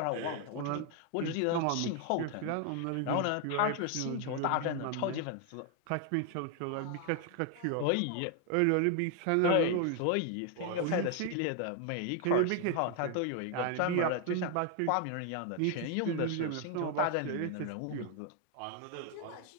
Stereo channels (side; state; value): both; different; correlation 0.00